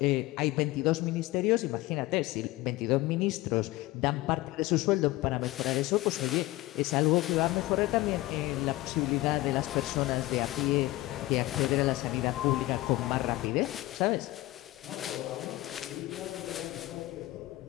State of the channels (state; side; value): quieter; right; 18.5 dB